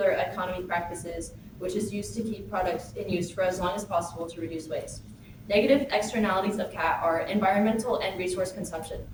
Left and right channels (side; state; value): both; identical; correlation 1.00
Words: economy practices, which is used to keep products in use for as long as possible to reduce waste. Negative externalities of CAT are environmental and resource consumption.